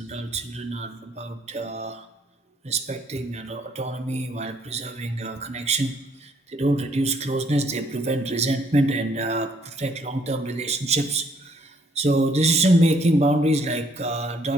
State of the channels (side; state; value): both; normal; correlation 0.66